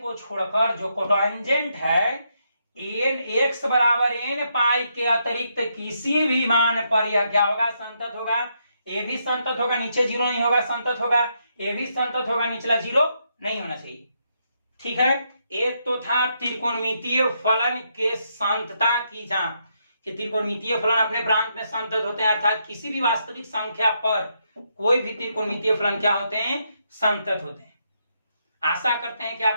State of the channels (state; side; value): inverted; both; correlation -0.78